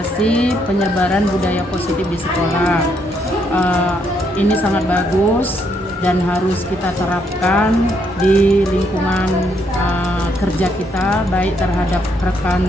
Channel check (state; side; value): normal; both; correlation 0.73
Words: penyebaran budaya positif di sekolah. Ini sangat bagus dan harus kita terapkan di lingkungan kerja kita, baik terhadap